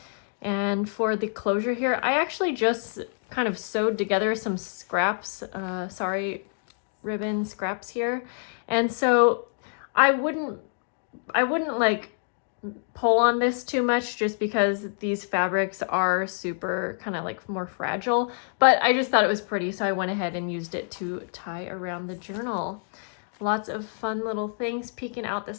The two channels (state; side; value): silent; right; digital silence